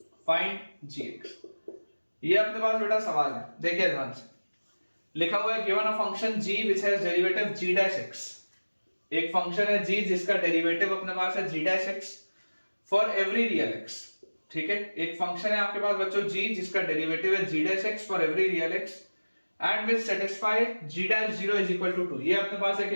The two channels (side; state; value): both; inverted; correlation -1.00